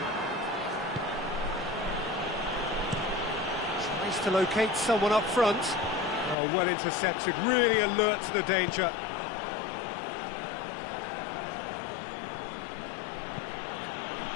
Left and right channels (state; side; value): drops out; right; at 6.4 s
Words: Tries to locate someone up front. Oh, well intercepted, really alert to the danger.